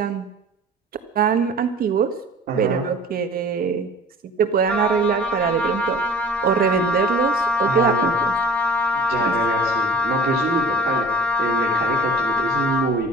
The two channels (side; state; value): both; normal; correlation 0.45